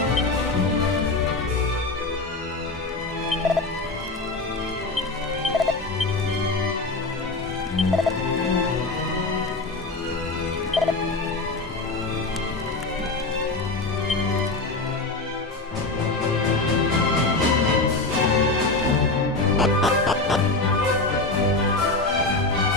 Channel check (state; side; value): quieter; right; 3.3 dB